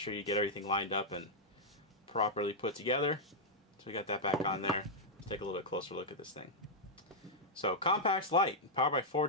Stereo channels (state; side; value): normal; both; correlation -0.05